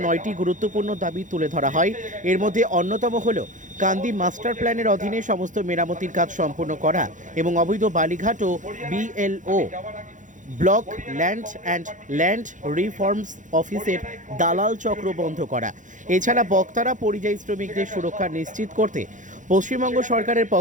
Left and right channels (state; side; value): late; left; 0.37 ms